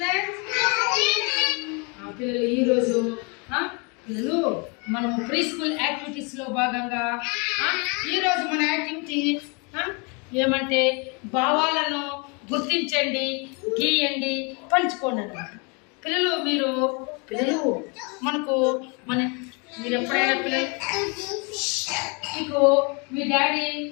పిల్లలు ఈరోజు పిల్లలు మనం ప్రీ స్కూల్ యాక్టివిటీస్లో భాగంగా ఈరోజు మన యాక్టివిటీ ఏమంటే భావాలను గుర్తించండి, గీయండి, పంచుకోండి అన్నమాట. పిల్లలు మనకు మీరు ఎప్పుడైనా పిల్లలు మీకు మీ డాడీ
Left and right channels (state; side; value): quieter; right; 32.5 dB